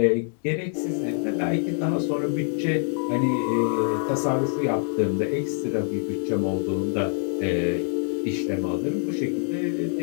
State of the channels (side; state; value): right; silent; 62 dB below the other